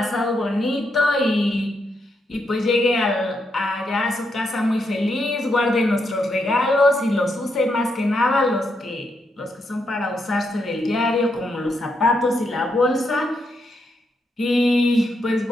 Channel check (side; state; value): both; normal; correlation 0.80